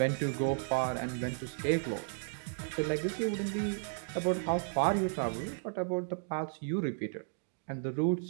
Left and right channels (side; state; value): left; silent; digital silence